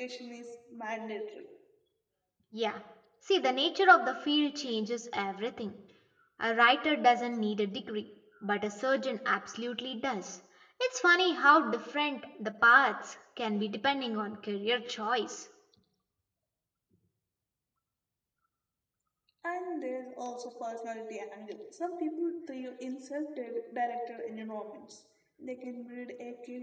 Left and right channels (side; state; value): both; identical; correlation 1.00